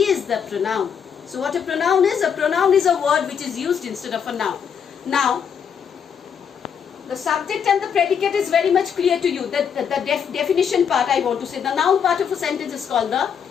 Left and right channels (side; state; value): right; quieter; 7.4 dB